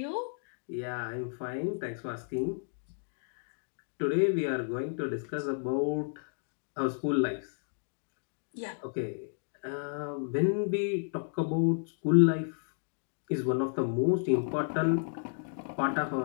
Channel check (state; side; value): silent; right; digital silence